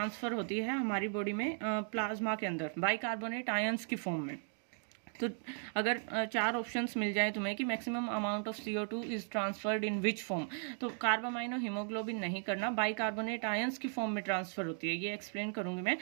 होती है हमारी बॉडी में प्लाज्मा के अंदर बाइकार्बोनेट आयंस की फॉर्म में। तो अगर चार ऑप्शंस मिल जाए तुम्हें कि maximum amount of CO2 is transferred in which form, तो कार्ब अमाइनो हीमोग्लोबिन नहीं करना, बाइकार्बोनेट आयंस की फॉर्म में ट्रांसफर होती है। ये एक्सप्लेन करूंगी मैं।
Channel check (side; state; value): left; silent; 53 dB below the other